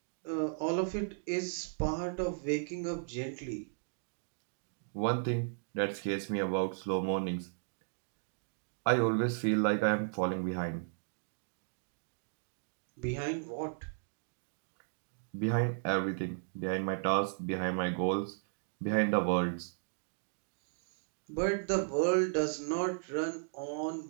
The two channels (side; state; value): left; silent; digital silence